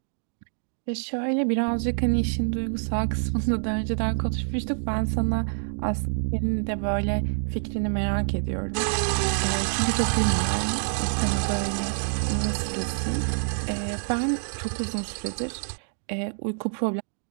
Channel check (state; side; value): silent; left; 60 dB below the other